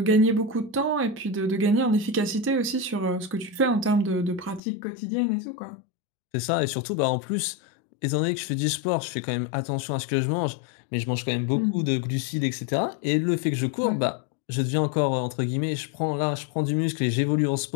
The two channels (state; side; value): drops out; right; at 4.6 s